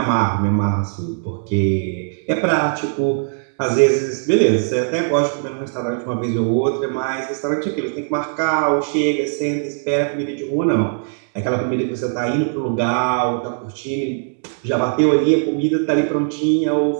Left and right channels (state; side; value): silent; left; digital silence